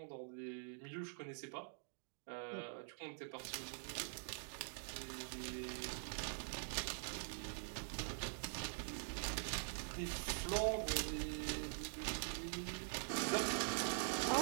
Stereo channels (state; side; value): silent; left; digital silence